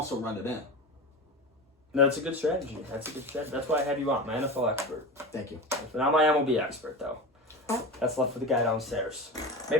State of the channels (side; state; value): both; normal; correlation 0.27